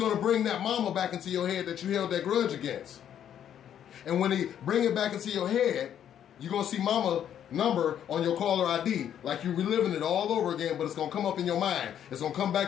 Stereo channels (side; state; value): right; quieter; 9.8 dB